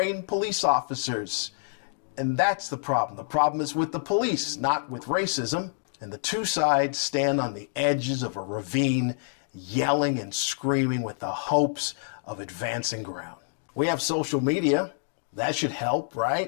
police officers. And that's the problem. The problem is with the police, not with racism. And the two sides stand on the edges of a ravine, yelling and screaming with the hopes of advancing ground. We have social media. That should help,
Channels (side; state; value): right; silent; digital silence